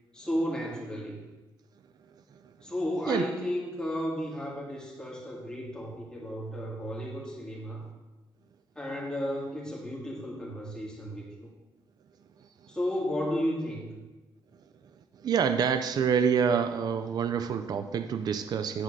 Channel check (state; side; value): quieter; left; 3.6 dB